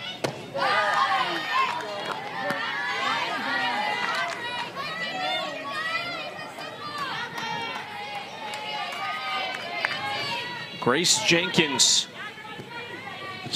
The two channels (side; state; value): both; identical; correlation 1.00